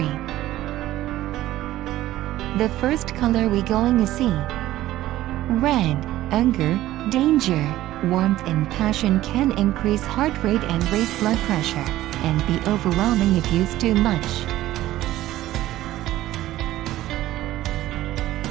The first color we going to see. Red, anger, danger, warmth and passion can increase heart rate and raise blood pressure, and be overwhelming if used too much.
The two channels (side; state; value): left; quieter; 14.9 dB